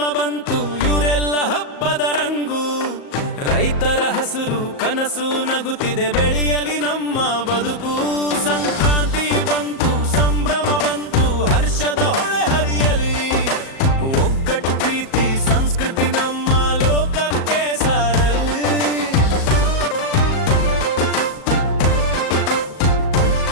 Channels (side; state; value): right; late; 37 ms